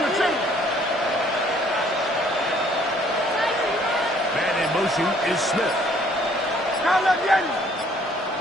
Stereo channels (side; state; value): both; normal; correlation 0.61